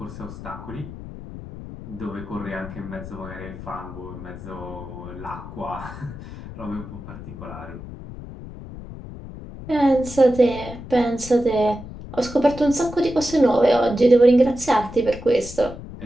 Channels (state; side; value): noise; left; rumble, 13 dB below the sound